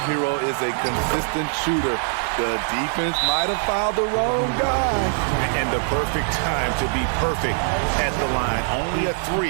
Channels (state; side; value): silent; left; 63 dB below the other